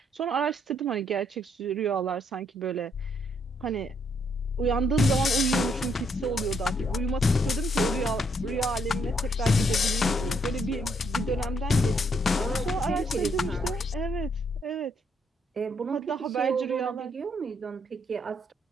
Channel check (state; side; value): normal; both; correlation 0.73